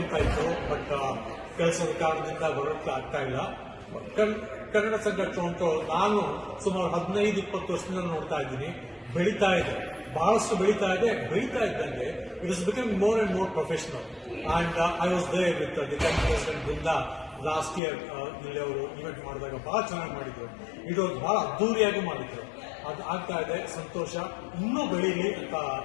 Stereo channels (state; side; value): drops out; right; at 17.8 s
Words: ಇತ್ತು, ಬಟ್ ಕೆಲಸದ ಕಾರಣದಿಂದ ಬರೋಕ್ಕೆ ಆಗ್ತಾ ಇಲ್ಲ. ಕನ್ನಡ ಸಂಘ ಟೊರೊಂಟೊ ನಾನು ಸುಮಾರು 15-20 ವರ್ಷದಿಂದ ನೋಡ್ತಾ ಇದ್ದೀನಿ. ಬೆಳೀತಾ ಇದೆ, ಬಹಳಷ್ಟು ಬೆಳೀತಾ ಇದ್ದಂಗೆ it is becoming more and more professional. And I was there with the president Brinda last year. ಇಲ್ಲಿ ಅವರು ಇವೆಂಟ್ ಮಾಡಿದಾಗ ಬಹಳ ಚೆನ್ನಾಗಿ ಮಾಡಿದ್ರು. ಇದು ಬಹಳ ಅದ್ದೂರಿಯಾಗಿ ಮಾಡಿದ್ರು. ಅದು ಆಗ್ತಾ ಇದೆ, ಸಂತೋಷ. ಇನ್ನೂ ಬೆಳೀಲಿ ಅಂತ